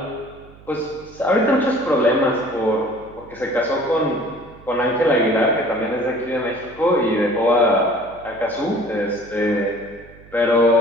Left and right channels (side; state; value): right; noise; hum, 22 dB below the sound